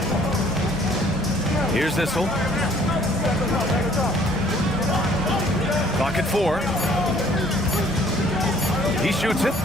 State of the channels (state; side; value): normal; both; correlation 0.58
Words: Here's Issel. Clock at 4. He shoots it.